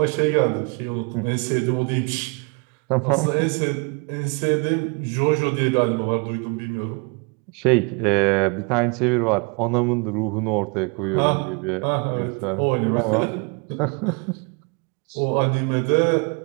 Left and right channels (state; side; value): quieter; left; 33.1 dB